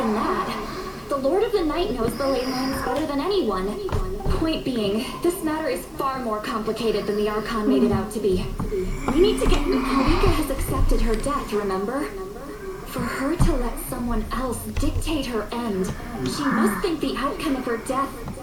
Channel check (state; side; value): identical; both; correlation 1.00